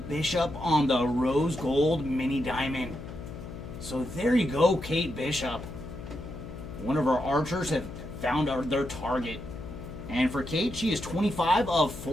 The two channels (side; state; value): left; noise; hum, 11 dB below the sound